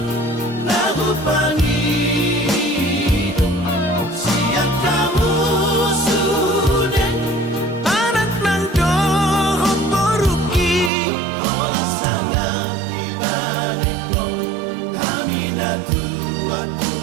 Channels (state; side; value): drops out; left; at 10.9 s